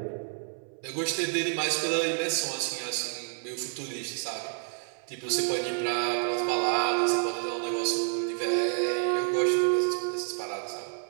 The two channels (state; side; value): silent; left; 58 dB below the other